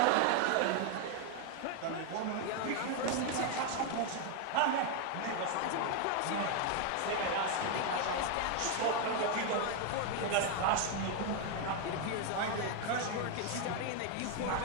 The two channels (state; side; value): different; both; correlation 0.01